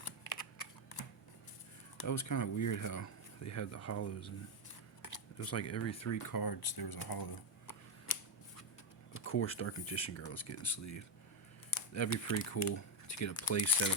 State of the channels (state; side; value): normal; both; correlation 0.05